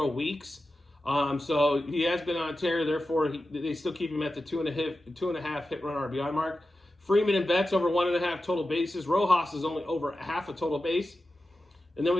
weeks. So he has been on a tear. Therefore, they still keep him at the 2.5 hit run RBI mark. Freeman and Betts over 1.5 total bases. Rojas is only over 1/2 a total base. And then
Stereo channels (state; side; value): normal; both; correlation 0.92